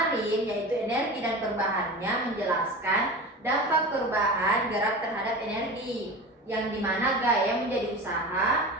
yaitu energi dan perubahannya menjelaskan dampak perubahan gerak terhadap energi, yang dimana gaya menjadi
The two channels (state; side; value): normal; both; correlation 0.31